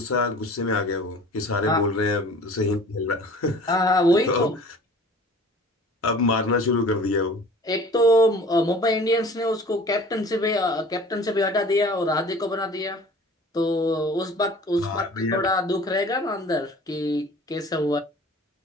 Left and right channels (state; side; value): normal; both; correlation 0.46